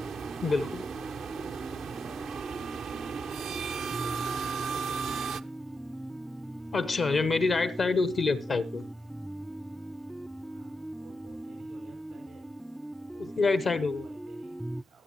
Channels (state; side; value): normal; both; correlation 0.86